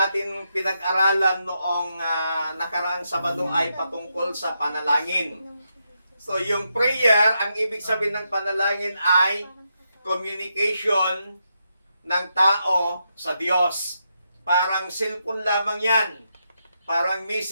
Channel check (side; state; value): both; inverted; correlation -0.83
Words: pinag-aralan noong nakaraang Sabado ay patungkol sa panalangin. So yung prayer, ang ibig sabihin ng panalangin ay communication ng tao sa Diyos. Parang cellphone lamang yan. Parang